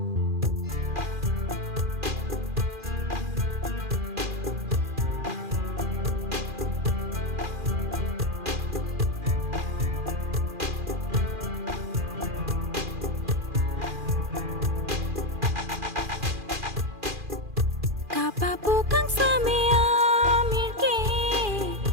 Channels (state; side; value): late; left; 2.4 ms